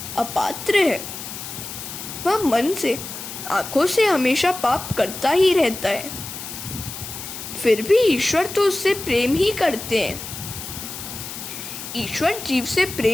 अपात्र है। वह मन से, आँखों से हमेशा पाप करता ही रहता है, फिर भी ईश्वर तो उससे प्रेम ही करते हैं। ईश्वर जीव से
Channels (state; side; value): noise; left; hiss, 9 dB below the sound